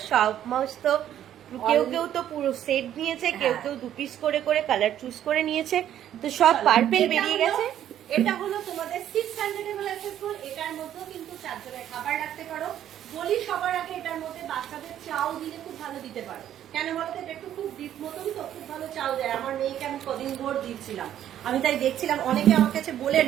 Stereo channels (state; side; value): quieter; left; 11.0 dB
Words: সমস্ত। কেউ কেউ তো পুরো সেট নিয়েছে, কেউ কেউ 2 পিস করে করে কালার চুজ করে নিয়েছে, তো সব পার্পেল বেরিয়ে গেছে। এটা হলো তোমাদের 600 ml অ্যাসেসবল, এটার মধ্যেও কিন্তু 4 জনের খাবার রাখতে পারো। বলি সবার আগে, এটার মধ্যে বাচ্চাদের চাও দিলে খুব ভালো দিতে পারো। কেন বলতো, এটা একটু খুব ডিপ মতন তো, খুব ভালো চাও দেয়। আমার মেয়েকে আমি কদিন ভোর দিচ্ছিলাম, আমি তাই দেখছিলাম, অনেকে আমার কাছে বলে